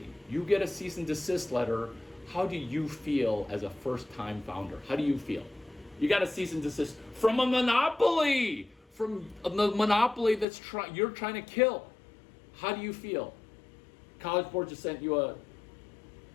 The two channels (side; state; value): right; drops out; at 10.5 s